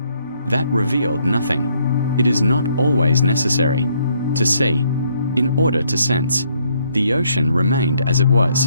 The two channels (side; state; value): both; inverted; correlation -0.69